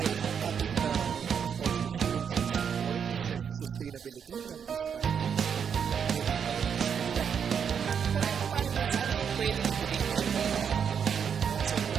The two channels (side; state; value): left; quieter; 7.3 dB